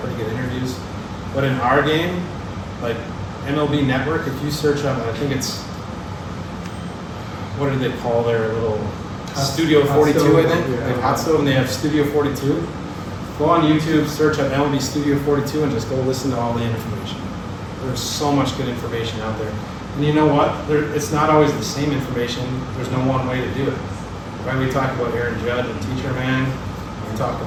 good interviews. But in our game, like MLB Network, if you search up, I think it's, what do they call their little Studio 42, I think? They have Hot Stove and they have Studio 42. Go on YouTube, search up MLB Studio 42 and just go listen to all the information. There's so much good information out there. And you know what? It's not always the same information. There's no one way to do it. Right? We talk about Aaron Judge and Teacher Man. We talk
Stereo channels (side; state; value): both; identical; correlation 1.00